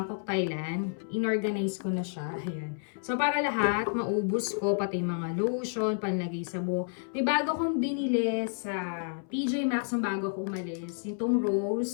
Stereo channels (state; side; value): silent; right; 58 dB below the other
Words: Thailand, inorganize ko na siya. Ayan. So, para lahat, maubos ko, pati mga lotion, panlagay sa buhok. May bago akong binili sa TJ Maxx ng bago ako umalis. Itong